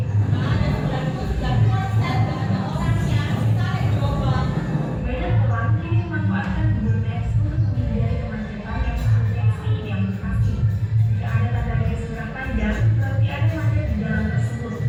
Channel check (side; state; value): both; identical; correlation 1.00